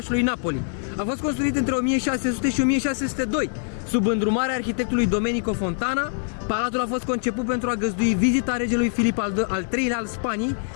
Napoli. A fost construit între 1600 și 1602, sub îndrumarea arhitectului Domenico Fontana. Palatul a fost conceput pentru a găzdui vizita regelui Filip al III-lea al Spaniei,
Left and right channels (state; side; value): silent; right; digital silence